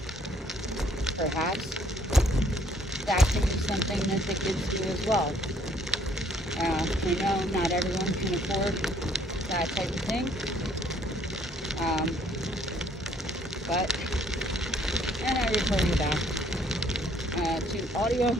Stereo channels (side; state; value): both; normal; correlation 0.63